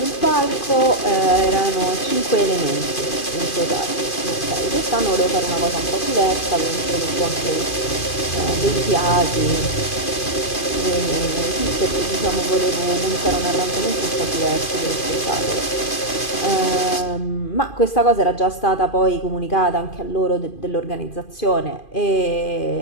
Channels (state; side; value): late; right; 2.5 ms